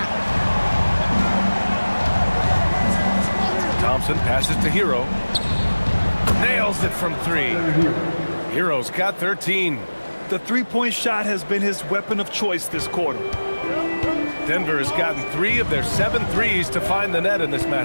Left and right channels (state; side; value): inverted; both; correlation -1.00